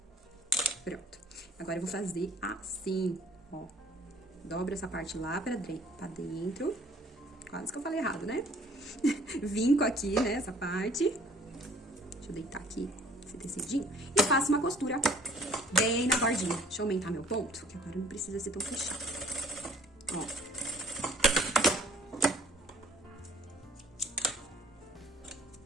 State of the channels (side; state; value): both; normal; correlation 0.55